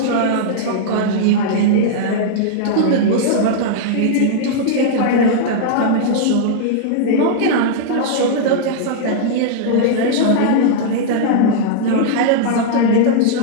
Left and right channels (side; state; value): both; different; correlation -0.02